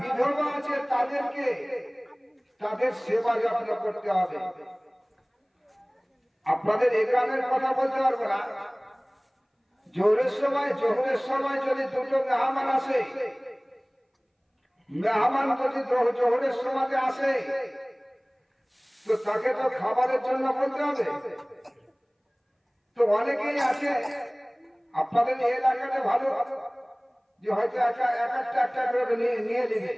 আছে তাদেরকে, তাদের সেবা যত্ন করতে হবে। আপনাদের এই গ্রামের কথা বলতে পারবো না, জোহরের সময় যদি দুটো মেহমান আসে, মেহমান যদি জোহরের সময় আসে তো তাকে তো খাবারের জন্য বলতে হবে। তো অনেকেই আছে আপনাদের এই এলাকাতে ভালো যে হয়তো একটা করে নিয়ে নেবে,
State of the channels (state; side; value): identical; both; correlation 1.00